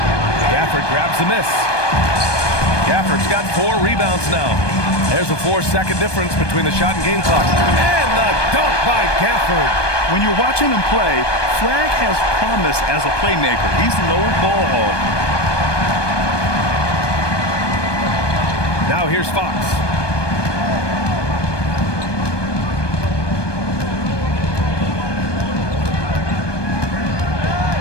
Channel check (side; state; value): right; late; 1.2 ms